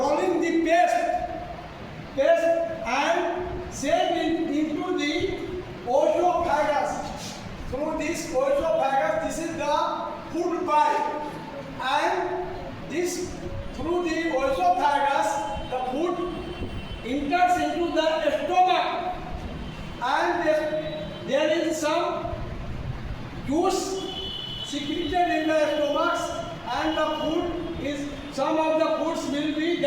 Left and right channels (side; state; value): both; identical; correlation 1.00